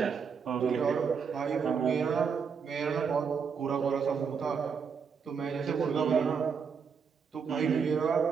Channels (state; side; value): quieter; left; 6.2 dB